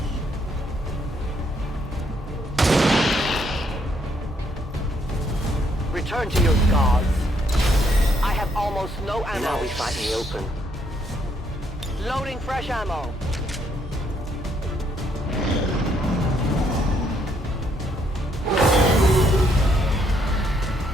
Return to your gods. I have almost no ammo. Now we fight in the open. Loading fresh ammo.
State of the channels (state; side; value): normal; both; correlation 0.71